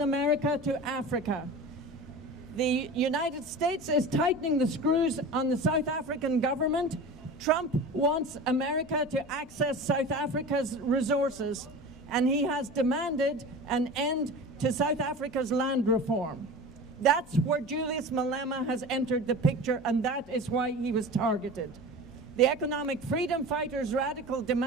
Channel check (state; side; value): normal; both; correlation 0.34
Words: America to Africa. The United States is tightening the screws on the South African government. Trump wants America to access South Africa's resources, and he has demanded an end to South Africa's land reform. That's where Julius Malema has entered the picture, and that is why he was targeted. The economic freedom fighters' radical